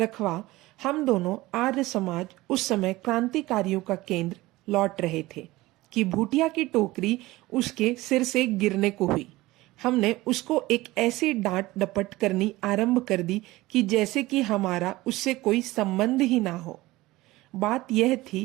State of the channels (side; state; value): left; quieter; 18.9 dB